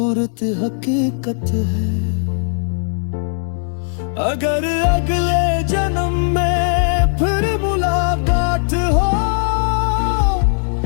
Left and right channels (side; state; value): right; silent; digital silence